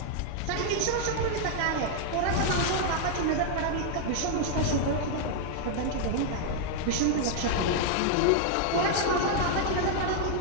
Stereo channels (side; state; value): both; different; correlation 0.00